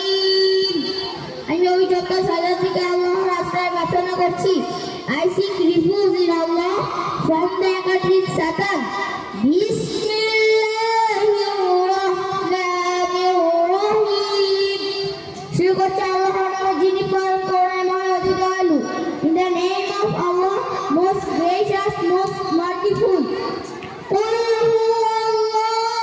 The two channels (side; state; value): both; identical; correlation 1.00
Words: আমি পবিত্র শয়তান থেকে আল্লাহর আশ্রয় প্রার্থনা করছি। I seek refuge in Allah from the accursed Satan. Bismillah.